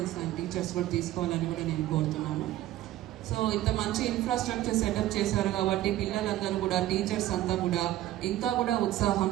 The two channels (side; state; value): left; quieter; 14.3 dB